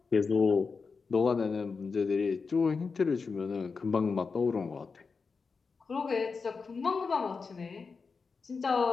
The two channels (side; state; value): right; quieter; 4.9 dB